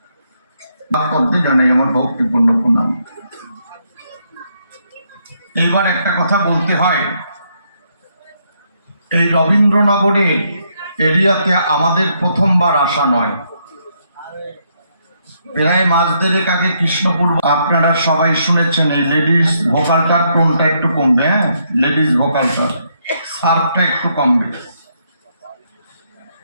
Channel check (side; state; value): both; inverted; correlation -0.75